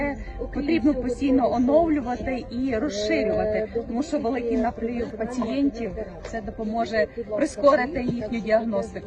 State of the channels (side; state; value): both; identical; correlation 1.00